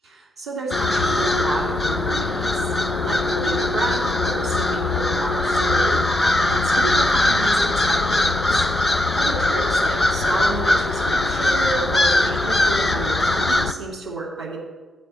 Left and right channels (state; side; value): normal; both; correlation 0.82